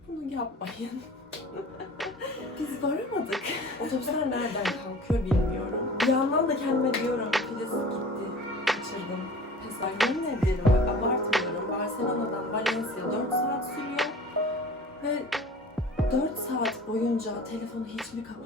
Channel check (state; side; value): normal; both; correlation 0.42